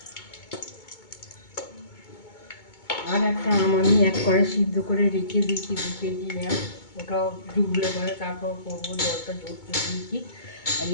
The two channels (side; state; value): right; late; 2.2 ms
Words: আর একটা আম আমি 1 কড়াই সিদ্ধ করে রেখে দিয়েছি, 2 কেজি আম, ওটাও ডুবলে পরে তারপর করবো, জলটা ঝরতে দিয়েছি। আর